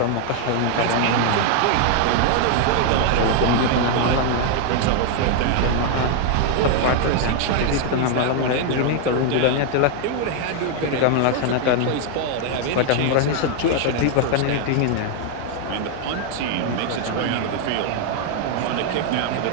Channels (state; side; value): different; both; correlation 0.01